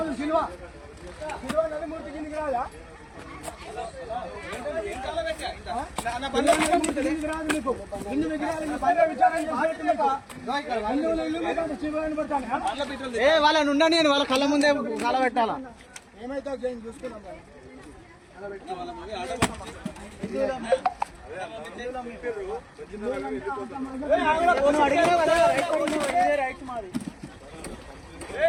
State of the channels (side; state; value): both; identical; correlation 1.00